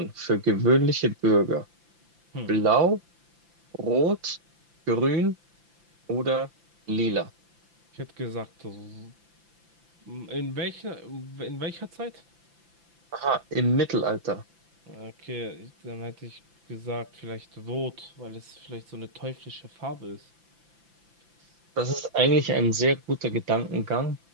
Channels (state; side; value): late; left; 5.9 ms